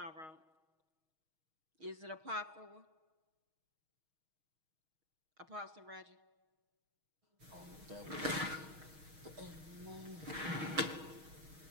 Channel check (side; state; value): left; late; 6.4 ms